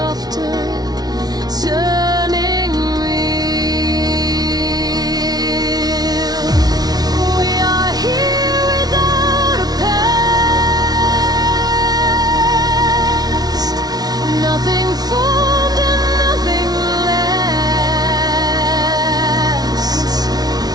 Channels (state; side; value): late; left; 0.19 ms